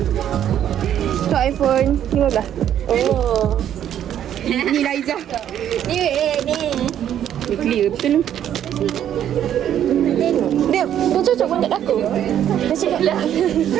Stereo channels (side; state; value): left; quieter; 10.4 dB